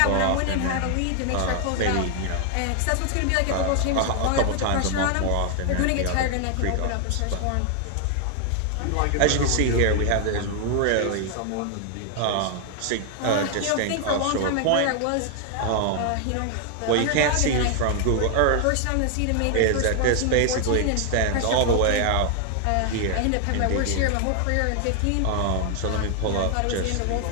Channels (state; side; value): different; both; correlation 0.00